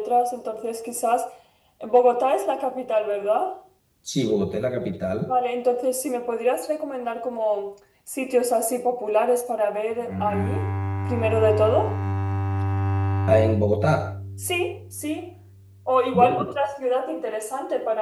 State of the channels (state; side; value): identical; both; correlation 1.00